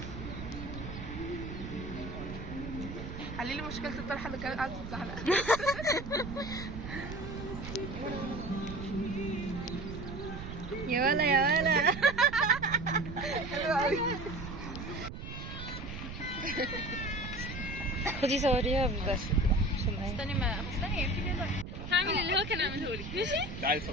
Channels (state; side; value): noise; right; rumble, 9 dB below the sound